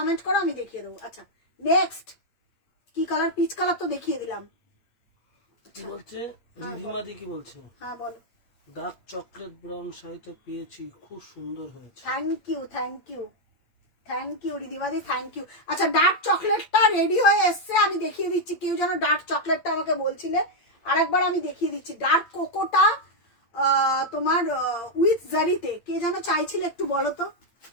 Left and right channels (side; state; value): right; late; 8.7 ms